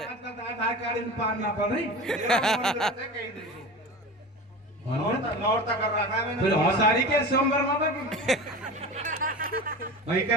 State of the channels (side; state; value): both; normal; correlation 0.31